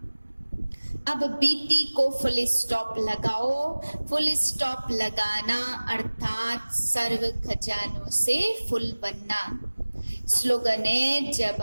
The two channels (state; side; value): inverted; both; correlation -1.00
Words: अब बीती को फुल स्टॉप लगाओ। फुल स्टॉप लगाना अर्थात सर्व खजानों से फुल बनना। स्लोगन है, जब